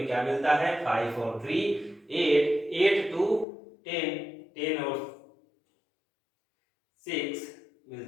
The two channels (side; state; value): right; drops out; at 3.5 s